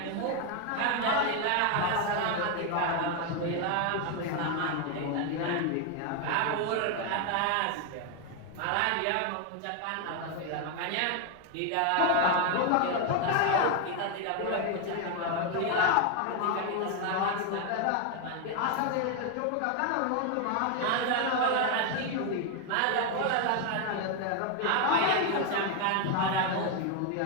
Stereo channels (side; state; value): both; different; correlation 0.01